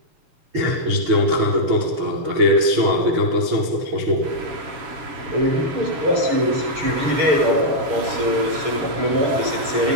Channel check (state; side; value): late; left; 7.2 ms